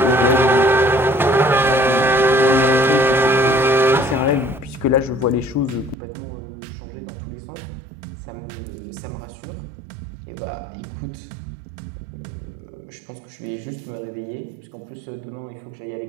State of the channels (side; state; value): left; drops out; at 6.0 s